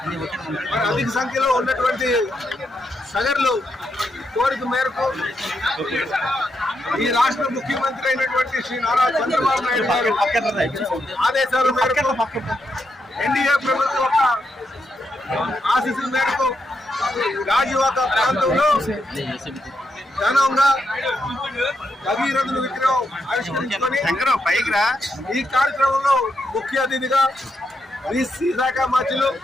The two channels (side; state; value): both; normal; correlation 0.82